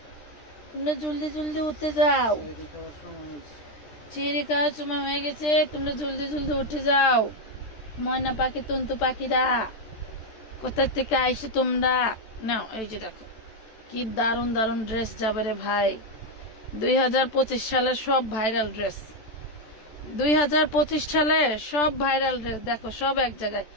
তোমরা জলদি জলদি উঠে যাও, চিড়ি খাওয়ার সময় হয়ে গেছে, তোমরা জলদি জলদি উঠে যাও। ময়না পাখি, টুনটু পাখিরা কোথা থেকে আইসো তোমরা? নাও এই যে দেখো কি দারুন দারুন ড্রেস যাবে রে ভাই। 2025 সালের সব ভাইরাল ড্রেস, 2025 সালে সব ভাইরাল ড্রেস দেখো, সব এক জায়গায়।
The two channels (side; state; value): right; late; 14 ms